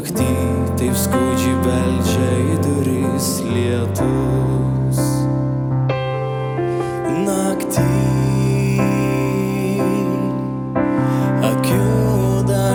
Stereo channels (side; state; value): both; identical; correlation 1.00